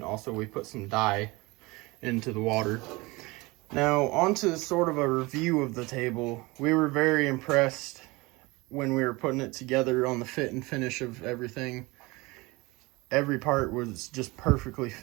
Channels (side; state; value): left; quieter; 23.5 dB